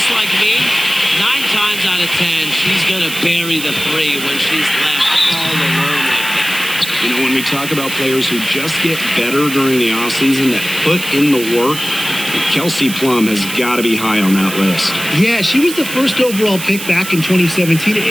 like me, 9 times out of 10, she's going to bury the three when she's left all alone like that. You know, when we talk about players who just get better during the offseason, that put in the work, Kelsey Plum has got to be high on that list. Yeah, she was the first overall pick back in 2017,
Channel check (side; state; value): right; noise; hiss, 9 dB below the sound